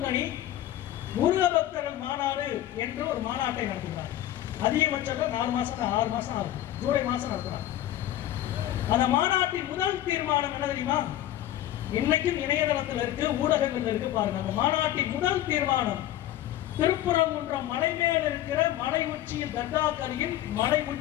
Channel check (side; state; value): right; quieter; 13.2 dB